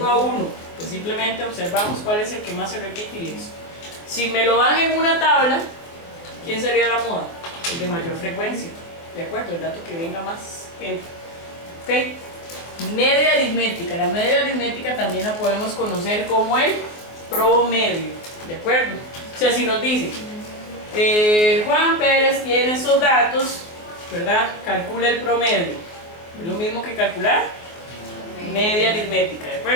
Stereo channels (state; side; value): late; right; 24 ms